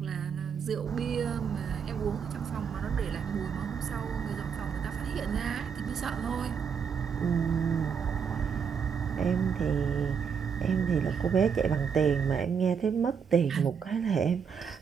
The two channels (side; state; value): left; quieter; 6.7 dB